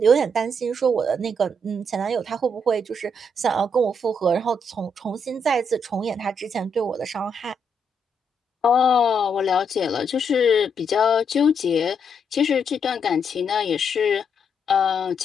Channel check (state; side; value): normal; both; correlation 0.77